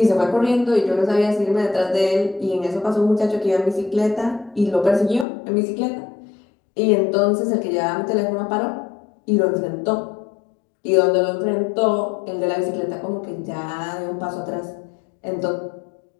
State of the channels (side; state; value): right; drops out; at 5.2 s